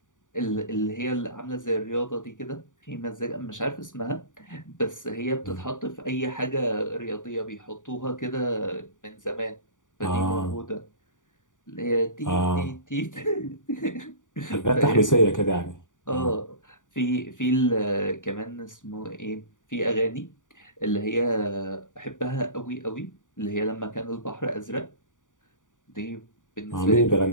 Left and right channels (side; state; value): right; late; 0.87 ms